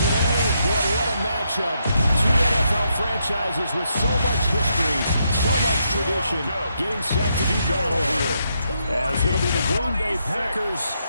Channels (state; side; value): inverted; both; correlation -0.79